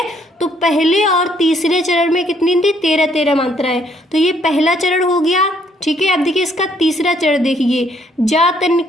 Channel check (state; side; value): normal; both; correlation 0.67